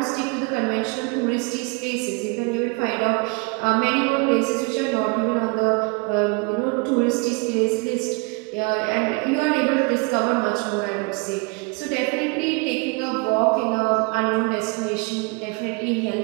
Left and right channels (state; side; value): quieter; left; 29.9 dB